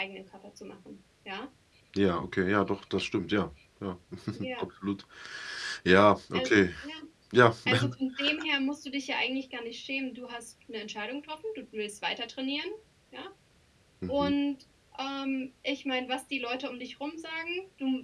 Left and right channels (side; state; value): both; identical; correlation 1.00